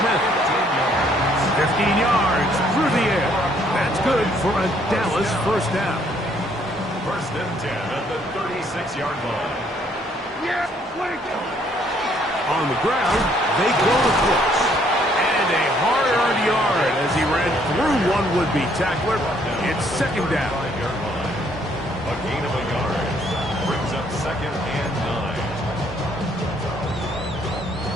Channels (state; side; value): normal; both; correlation 0.66